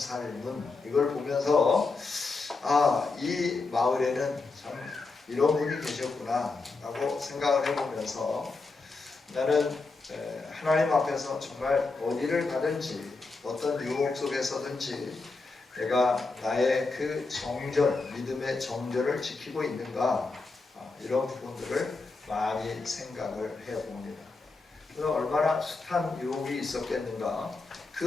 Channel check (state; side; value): quieter; right; 3.9 dB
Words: 이걸 보면서 이 마을에는 참 이런 분이 계셨구나 라고 생각을 해보면서 나는 하나님 앞에서 정말 어디를 가든지 어떤 유혹 속에서든지 내가 나의 그 정절, 믿음의 정절을 지키고 있는가, 이런 부분들을 많이 생각을 해봅니다. 그래서 얼마나 숱한 유혹이 있었겠는가,